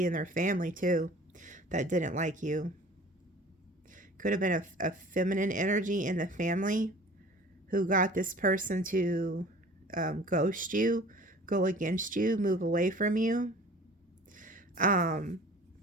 in their family too that didn't like you. Could have been a feminine energy in the family who got this person to ghost you, go against you, move away from you.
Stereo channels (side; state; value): both; normal; correlation 0.45